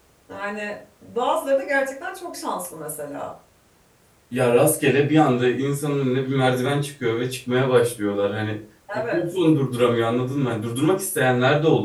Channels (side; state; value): both; identical; correlation 1.00